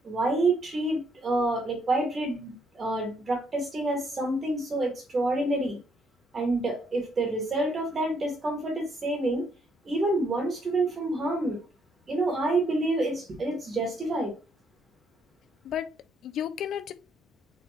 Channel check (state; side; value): normal; both; correlation 0.71